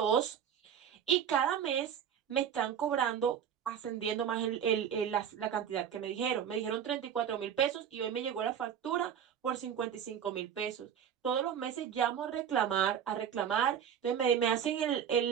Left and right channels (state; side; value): quieter; left; 8.6 dB